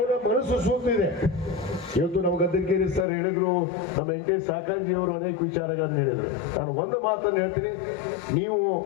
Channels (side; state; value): right; drops out; at 3.1 s